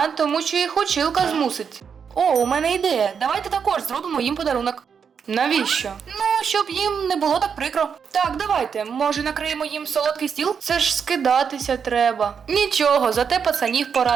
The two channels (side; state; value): left; quieter; 6.8 dB